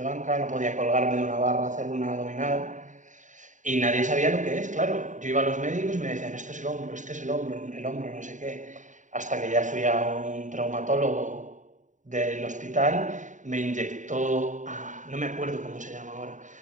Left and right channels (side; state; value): left; late; 0.36 ms